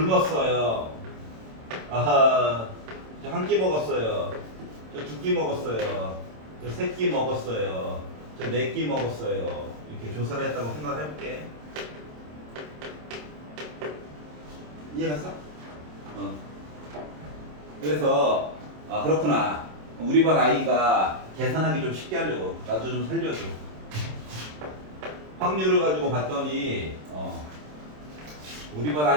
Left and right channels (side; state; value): left; late; 27 ms